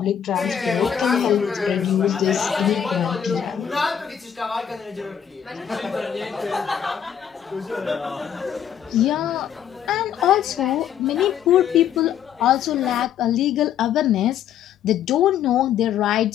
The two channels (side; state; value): right; quieter; 9.0 dB